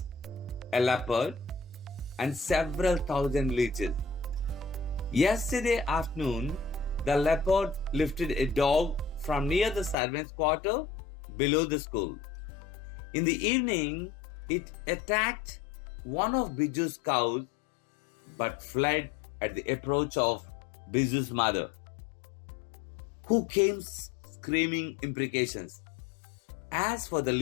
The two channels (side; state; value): right; drops out; at 10.0 s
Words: a leopard, and several thousand leeches. Yesterday afternoon, the leopard lifted a dog from near the servants' quarter below the school. In the evening, it attacked one of Biju's cows but fled at the approach of Biju's mother, who came screaming imprecations. As for the